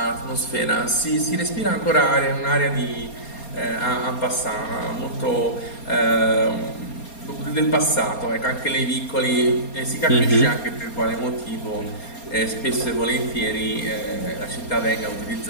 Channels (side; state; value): right; late; 4.3 ms